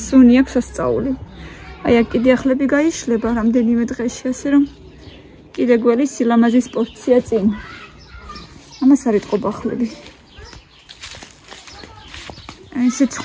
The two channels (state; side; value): identical; both; correlation 1.00